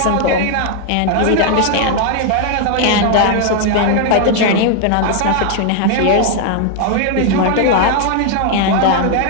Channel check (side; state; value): both; different; correlation 0.00